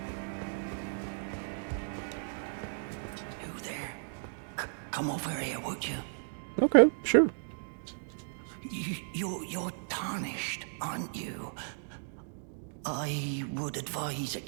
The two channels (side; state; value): left; silent; digital silence